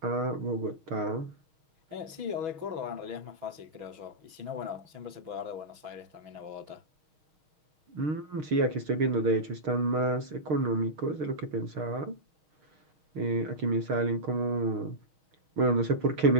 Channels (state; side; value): late; left; 6.2 ms